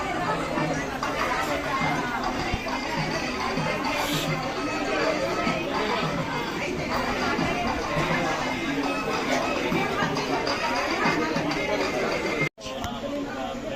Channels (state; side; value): identical; both; correlation 1.00